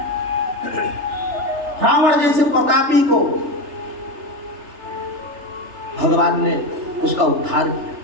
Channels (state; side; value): late; left; 3.3 ms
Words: रावण जैसे प्रतापी को भगवान ने उसका उद्धार किया।